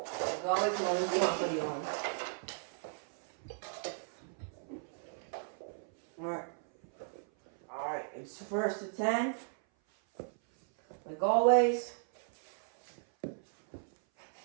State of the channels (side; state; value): left; silent; 54 dB below the other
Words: ahead and always be off the on. Alright, it's first and 10. Like always.